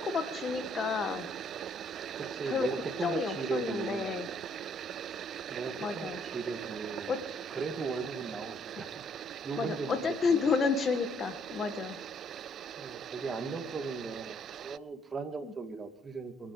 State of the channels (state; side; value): normal; both; correlation 0.66